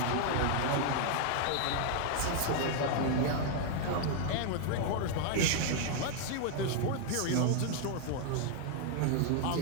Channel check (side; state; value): both; different; correlation 0.00